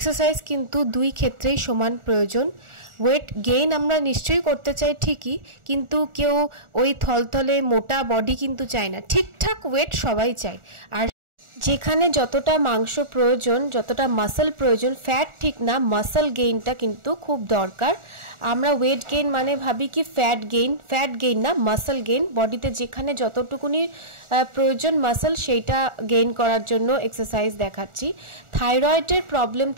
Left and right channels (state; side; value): late; left; 1.4 ms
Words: किन्तु दुई क्षेत्रेई समान प्रयोजन। वेट गेइन आमरा निश्चयই करते चाই ঠিকই, কিন্তু কেউ ওই থলথলে মোটা বডি কিন্তু চায় না, ঠিকঠাক ওয়েট সবাই চায়। আর যেখানে যতটা মাংস প্রয়োজন, যতটা মাসল প্রয়োজন, ফ্যাট ঠিক না, মাসল গেইনটা কিন্তু খুব দরকার। আমরা ওয়েট গেইন মানে ভাবি কি ফ্যাট গেইন না, মাসল গেইন। বডিতে যেখানে যতটুকুনি প্রয়োজন মাসল, সেইটা গেইন করার জন্য এক্সারসাইজ দেখাচ্ছি। থাইরয়েডের প্রবলেম